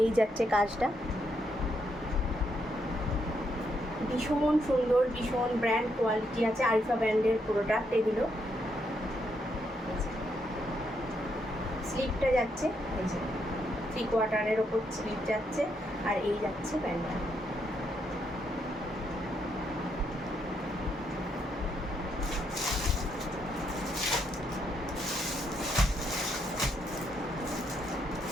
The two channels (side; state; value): both; normal; correlation 0.77